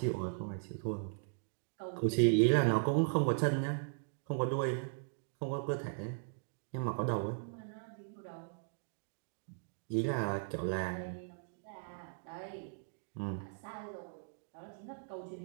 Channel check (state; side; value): silent; left; digital silence